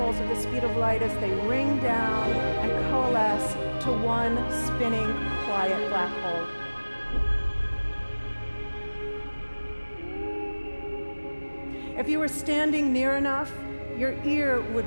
at the speed of light as they ring down and coalesce to one spinning, quiet black hole. If you were standing near enough, your ear would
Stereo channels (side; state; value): both; inverted; correlation -1.00